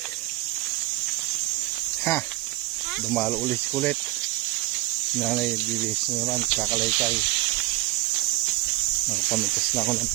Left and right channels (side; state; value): left; quieter; 19.0 dB